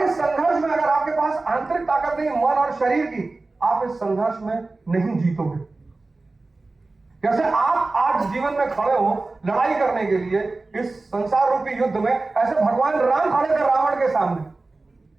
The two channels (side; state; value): left; quieter; 3.4 dB